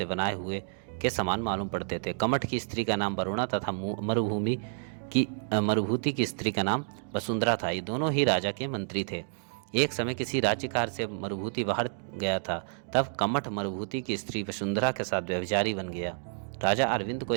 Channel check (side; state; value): left; silent; digital silence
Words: बनाए हुए के समान मालूम पड़ते थे। कमठ की स्त्री का नाम वरुणा तथा मरुभूति की स्त्री का नाम वसुंधरा था। ये दोनों ही राजा के मंत्री थे। एक समय किसी राज्यकार से मरुभूति बाहर गया था, तब कमठ मरुभूति की स्त्री वसुंधरा के साथ व्यभिचारी बन गया। राजा अरविंद को